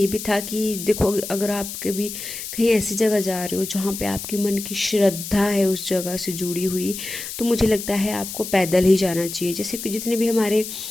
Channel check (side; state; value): left; noise; hiss, 8 dB below the sound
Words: भी था कि देखो, अगर आप कभी कहीं ऐसी जगह जा रहे हो जहाँ पे आपकी मन की श्रद्धा है उस जगह से जुड़ी हुई, तो मुझे लगता है आपको पैदल ही जाना चाहिए। जैसे कि जितने भी हमारे